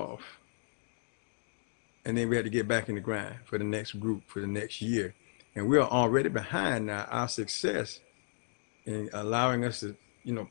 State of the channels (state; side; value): silent; right; digital silence